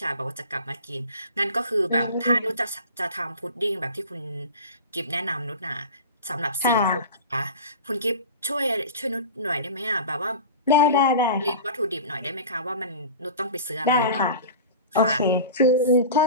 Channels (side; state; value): both; inverted; correlation -0.35